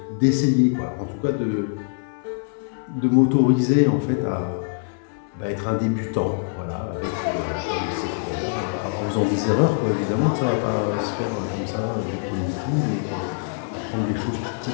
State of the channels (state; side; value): silent; right; 63 dB below the other